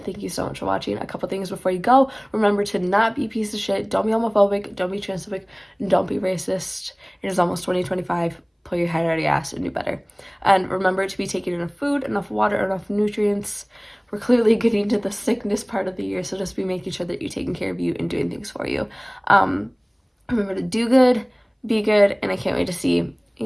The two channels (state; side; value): identical; both; correlation 1.00